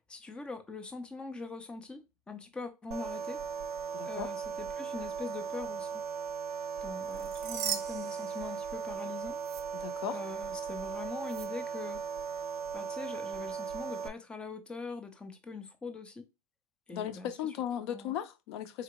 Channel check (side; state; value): both; normal; correlation 0.56